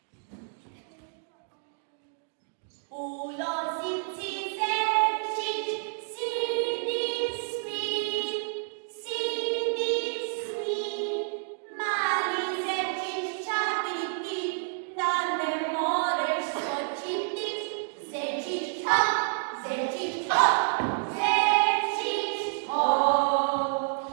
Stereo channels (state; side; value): silent; left; digital silence